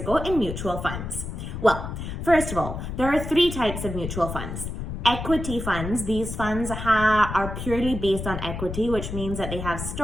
in mutual funds? Well, first of all, there are three types of mutual funds. Equity funds, these funds are purely based on equity, which means that they have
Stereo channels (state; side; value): noise; left; rumble, 6 dB below the sound